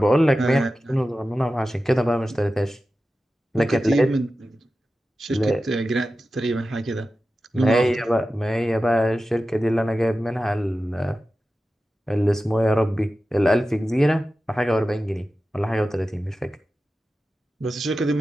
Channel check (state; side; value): normal; both; correlation 0.94